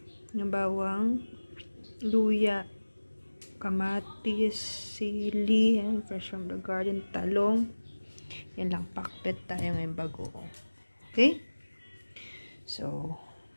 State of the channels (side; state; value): both; inverted; correlation -1.00